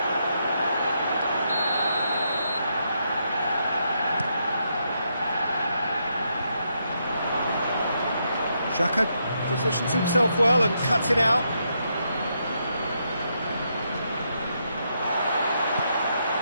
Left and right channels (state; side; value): inverted; both; correlation -0.79